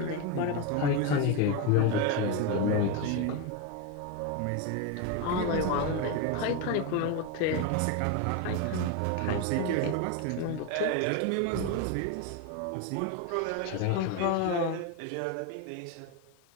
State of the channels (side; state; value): both; different; correlation 0.03